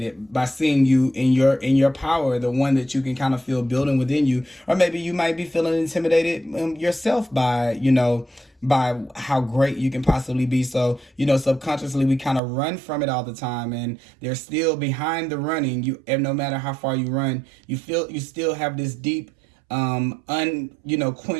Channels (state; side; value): drops out; left; at 12.4 s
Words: by seeing you in your power, the one that you can kind of feel building within you. Or maybe you might be feeling intimidated yourself by by how great you can possibly be. So subconsciously we kind of run from it all the time, and they're still behind the running. And no matter how far you run, you still have this deep